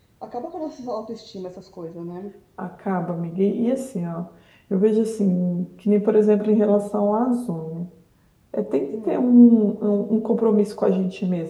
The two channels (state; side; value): identical; both; correlation 1.00